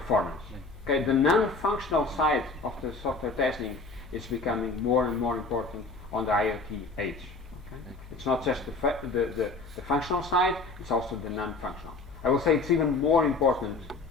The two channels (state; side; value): quieter; right; 3.6 dB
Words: Okay, the non-functional side of the software testing is becoming more and more important on the IoT age. Okay? It's not just the functional side, it's also the non-functional. I will say it's even more important